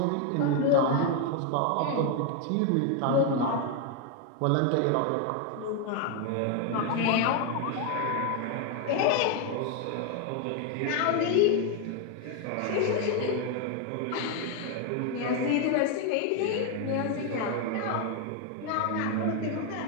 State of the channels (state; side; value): different; both; correlation 0.01